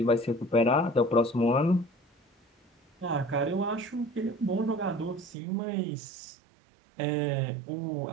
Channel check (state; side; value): drops out; left; at 5.4 s